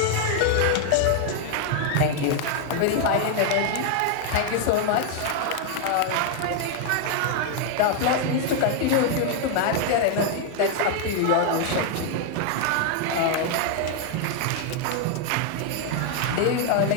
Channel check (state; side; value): different; both; correlation 0.00